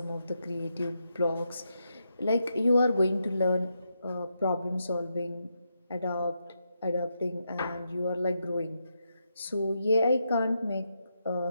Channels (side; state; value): both; inverted; correlation -0.83